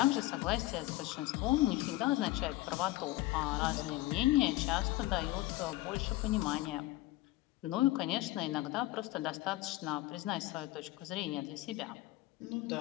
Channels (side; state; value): right; quieter; 17.7 dB